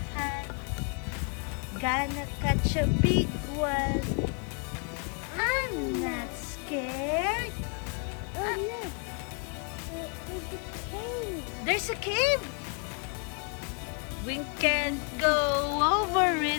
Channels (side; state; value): right; quieter; 36.0 dB